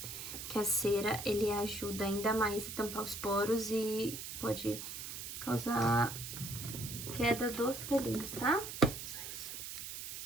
Que a cera, ele ajuda ainda mais a tampar os poros e pode causar queda dos pelinhos, tá? Só isso.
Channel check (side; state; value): right; noise; hiss, 8 dB below the sound